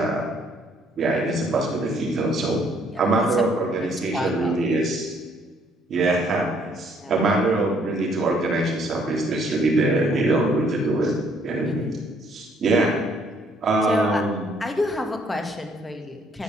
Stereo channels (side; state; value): both; normal; correlation 0.66